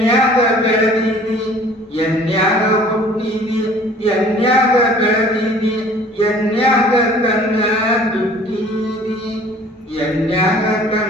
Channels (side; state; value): both; normal; correlation 0.50